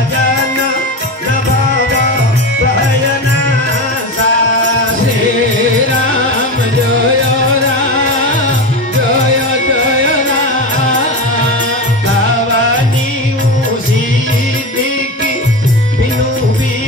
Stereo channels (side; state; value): both; normal; correlation 0.23